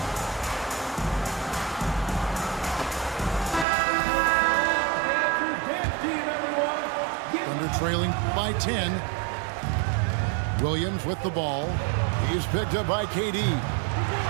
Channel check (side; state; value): left; drops out; at 3.7 s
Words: Thunder trailing by 10. Williams with the ball. He's picked up by KD.